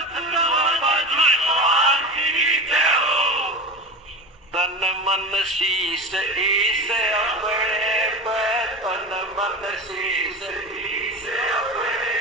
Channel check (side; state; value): both; normal; correlation 0.27